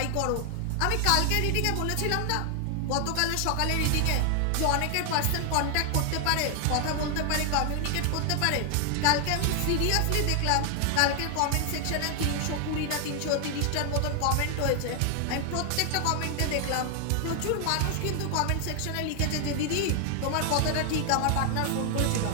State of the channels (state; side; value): different; both; correlation 0.00